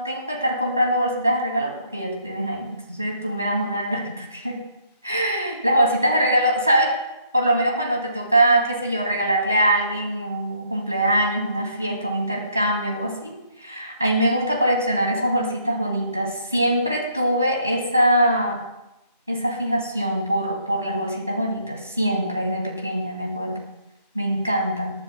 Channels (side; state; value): both; inverted; correlation -0.67